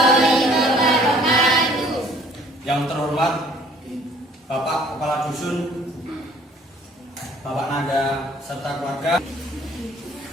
Yang terhormat Bapak Kepala Dusun, Bapak Nada serta keluarga,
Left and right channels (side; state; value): both; normal; correlation 0.56